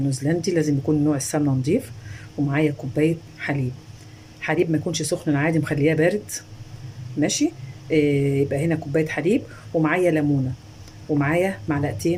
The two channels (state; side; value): identical; both; correlation 1.00